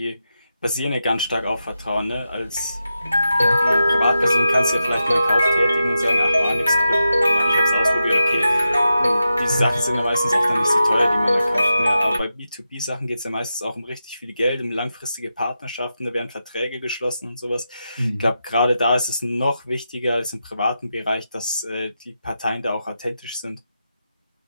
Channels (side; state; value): both; inverted; correlation -0.89